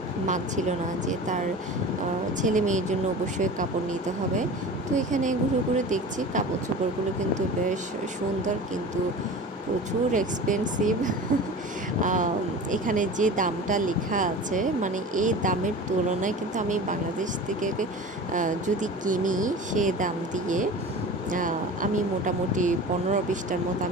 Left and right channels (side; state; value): both; normal; correlation 0.36